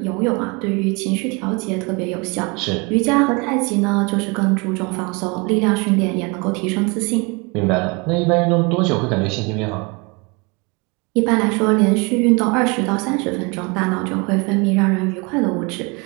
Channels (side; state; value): left; quieter; 29.0 dB